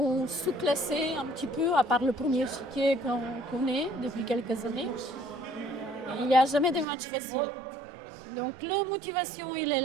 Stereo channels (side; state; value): left; drops out; at 6.9 s